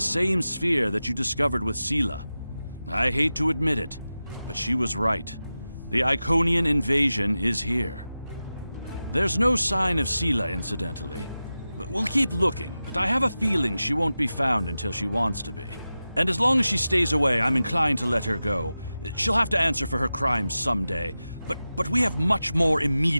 sphere that you discovered with Sela. I hate to admit it, but she was right. The Iconian invasion is here. There's no sign of Sela, incidentally. We'll keep looking, but I have a feeling she won't be found until she wants to be. And as long as she stays away, I'm inclined to let her go. She'll have to answer for her crimes someday, but we have much more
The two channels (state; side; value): inverted; both; correlation -0.94